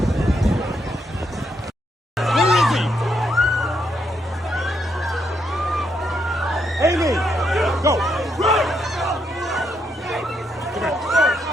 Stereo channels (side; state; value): both; normal; correlation 0.78